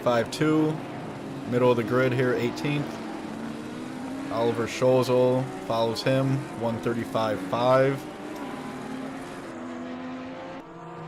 Middle of the grid here, 18th. Oliver Scholzel follows him, 135.5.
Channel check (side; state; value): both; identical; correlation 1.00